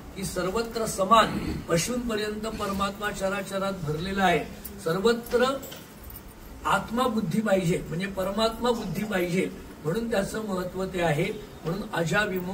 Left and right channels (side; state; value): both; identical; correlation 1.00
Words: की सर्वत्र समान पशूंपर्यंत परमात्मा चराचरात भरलेला आहे. सर्वत्र आत्मा बुद्धी पाहिजे म्हणजे परमात्मा बुद्धी पाहिजे, म्हणून त्याचं महत्व ते आहे. म्हणून